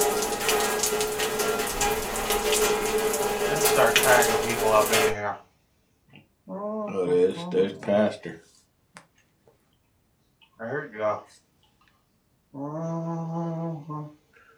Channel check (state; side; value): identical; both; correlation 1.00